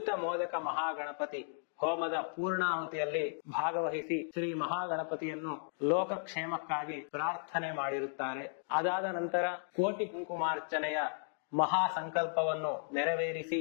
ಮೋದಕ ಮಹಾಗಣಪತಿ ಹೋಮದ ಪೂರ್ಣಾಹುತಿಯಲ್ಲಿ ಭಾಗವಹಿಸಿ ಶ್ರೀ ಮಹಾಗಣಪತಿಯನ್ನು ಲೋಕಕ್ಷೇಮಕ್ಕಾಗಿ ಪ್ರಾರ್ಥನೆ ಮಾಡಿರುತ್ತಾರೆ. ಅದಾದ ನಂತರ ಕೋಟಿ ಕುಂಕುಮಾರ್ಚನೆಯ ಮಹಾ ಸಂಕಲ್ಪವನ್ನು ನೆರವೇರಿಸಿ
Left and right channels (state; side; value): silent; right; digital silence